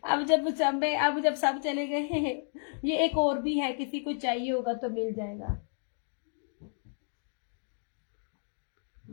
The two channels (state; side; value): silent; right; 57 dB below the other